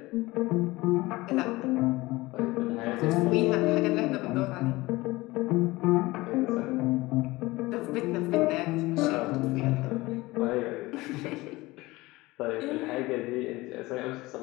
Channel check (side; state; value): right; quieter; 20.5 dB